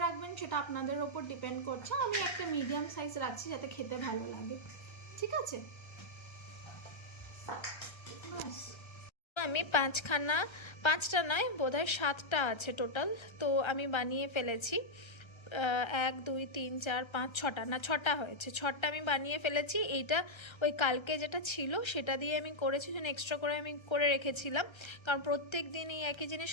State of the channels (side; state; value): right; late; 1.3 ms